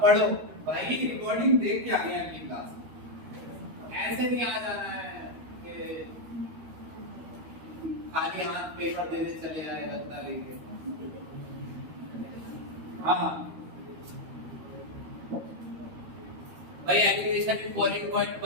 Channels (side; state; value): left; late; 13 ms